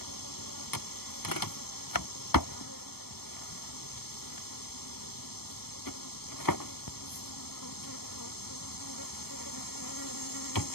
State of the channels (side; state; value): right; late; 0.95 ms